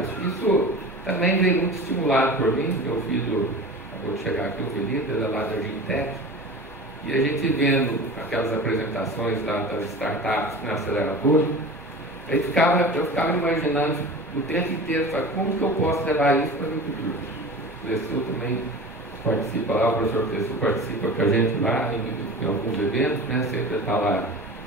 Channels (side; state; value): both; normal; correlation 0.35